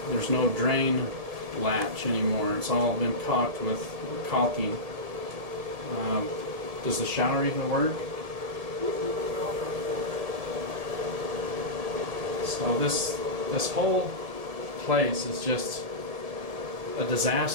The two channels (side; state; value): left; late; 1.7 ms